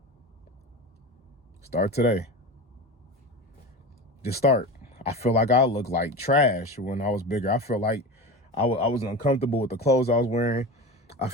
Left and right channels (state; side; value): normal; both; correlation 0.28